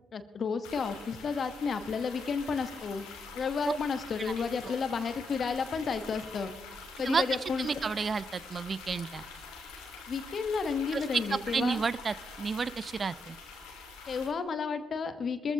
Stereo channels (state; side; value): normal; both; correlation 0.80